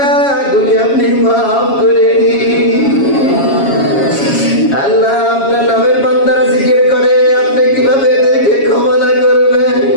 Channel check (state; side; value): late; right; 7.2 ms